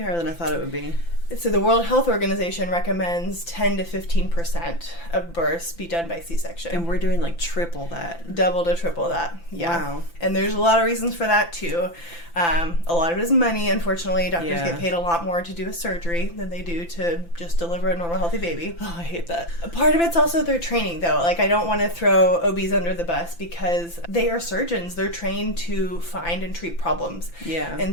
than I thought it would be. So the World Health Organization recommends 10 to 15% of births be done by C-section. And we're doing like triple that. Double to triple that. Yeah. Wow. And there's a lot of reasons for that too. A lot of it is money. Unfortunately, doctors get paid a lot more to do a surgery than they do to just deliver a normal, healthy baby. Oh, I hate that. A part of it's also their training, though. Like, I don't want to throw OBs under the bus because they are surgeons. They're trained to find and treat problems. Yeah.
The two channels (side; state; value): right; late; 5.9 ms